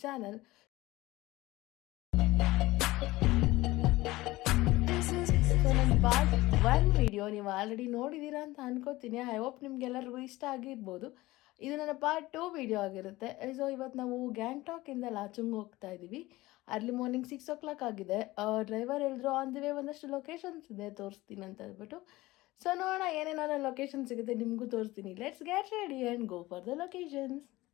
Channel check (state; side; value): quieter; right; 18.9 dB